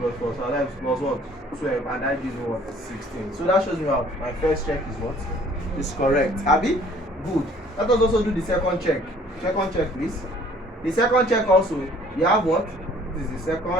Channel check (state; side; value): normal; both; correlation 0.56